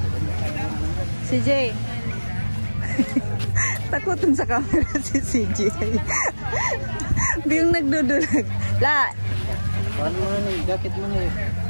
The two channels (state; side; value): inverted; both; correlation -1.00